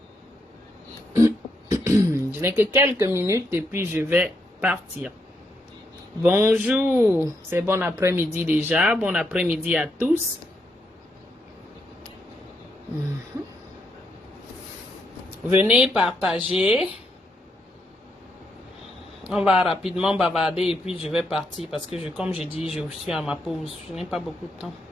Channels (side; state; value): both; normal; correlation 0.79